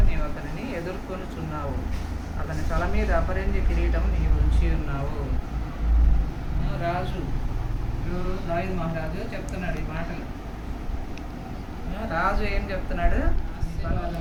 నీవు అతనిని ఎదుర్కొనుచున్నావు. అతని తల మీద అపరంజి కిరీటం నీవు ఉంచి ఉన్నావు. రాజు దావీదు మహారాజు చెప్తున్నాడు ఈ మాటలు. రాజు ఏం చెప్తున్నాడు?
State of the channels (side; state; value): both; identical; correlation 1.00